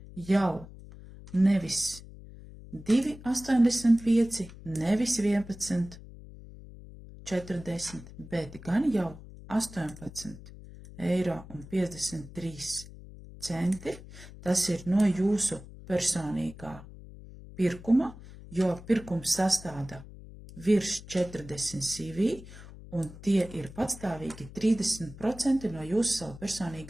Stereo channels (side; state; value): left; noise; hum, 16 dB below the sound